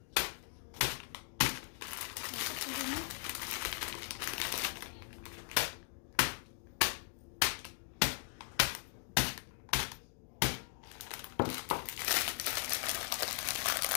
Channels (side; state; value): right; silent; digital silence